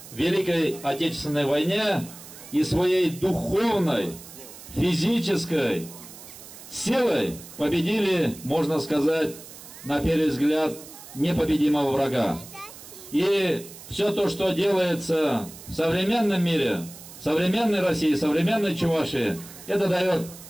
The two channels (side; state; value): right; noise; hiss, 17 dB below the sound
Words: Великой Отечественной войне и своей духовной, физической силой победили, можно сказать, на первый взгляд, непобедимого врага. И все то, что делается в современном мире, в современной России, в современной Чувашии, это дает